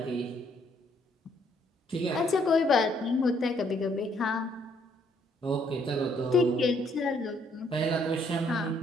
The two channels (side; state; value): both; normal; correlation 0.68